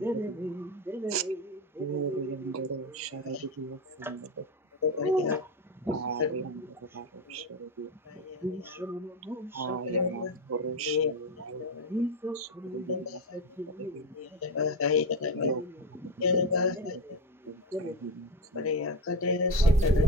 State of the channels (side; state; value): both; normal; correlation 0.16